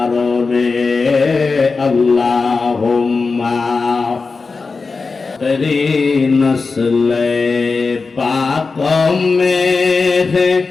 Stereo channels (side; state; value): right; quieter; 4.3 dB